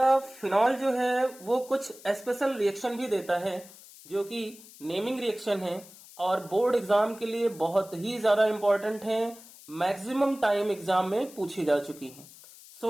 फिनॉल जो है वो कुछ स्पेशल रिएक्शन भी देता है जो कि नेमिंग रिएक्शन है और बोर्ड एग्जाम के लिए बहुत ही ज्यादा इंपॉर्टेंट है। मैक्सिमम टाइम एग्जाम में पूछी जा चुकी है।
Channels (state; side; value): noise; left; hiss, 20 dB below the sound